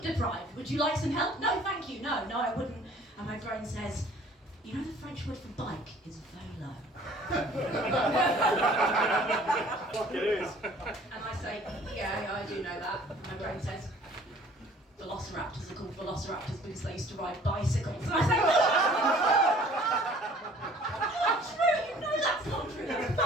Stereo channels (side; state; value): both; normal; correlation 0.52